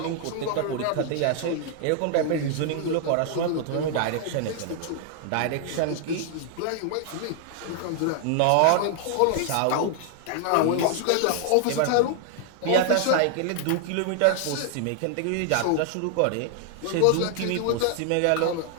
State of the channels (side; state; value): both; different; correlation 0.00